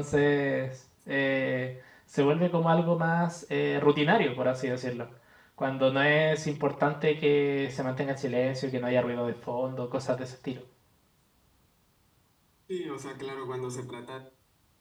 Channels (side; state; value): both; identical; correlation 1.00